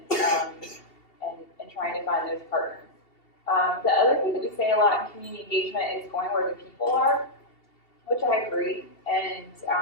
trying to find those partners. The other thing that we say a lot in community engagement is going where the people are, which I agree, and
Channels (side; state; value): right; late; 2.7 ms